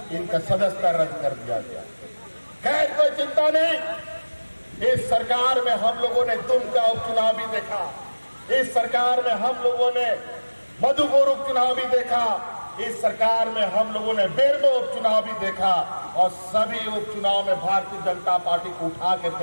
इनका सदस्यता रद्द कर दिया गया। खैर, कोई चिंता नहीं, इस सरकार में हम लोगों ने दुमका उपचुनाव भी देखा, इस सरकार में हम लोगों ने मधुपुर उपचुनाव भी देखा, इस सरकार में हम लोगों ने बेरमो उपचुनाव भी देखा और सभी उपचुनाव में भारतीय जनता पार्टी को उठा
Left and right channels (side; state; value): both; inverted; correlation -1.00